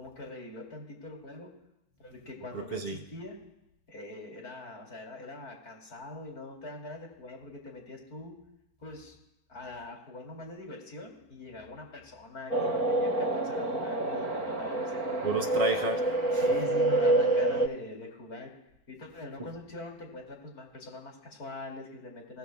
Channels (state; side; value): late; right; 4.2 ms